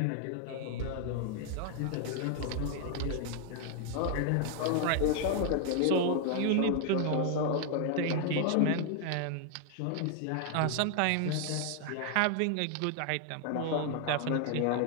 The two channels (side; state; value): both; different; correlation 0.00